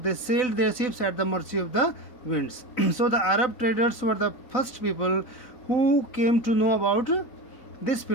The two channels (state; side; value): late; right; 4.0 ms